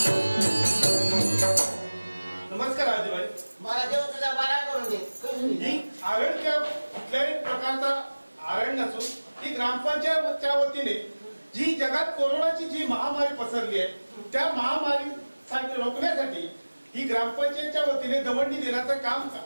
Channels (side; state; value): both; inverted; correlation -1.00